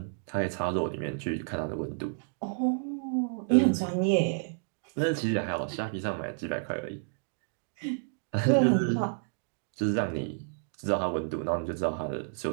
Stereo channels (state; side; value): silent; left; digital silence